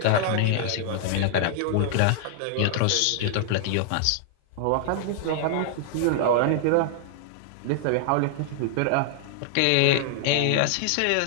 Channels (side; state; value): both; different; correlation -0.01